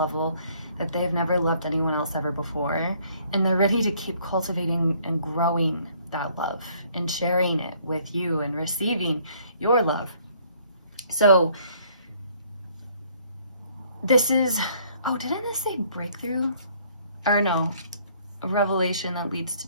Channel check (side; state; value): both; inverted; correlation -0.62